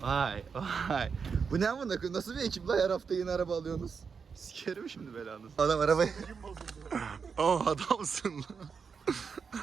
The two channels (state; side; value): quieter; left; 5.9 dB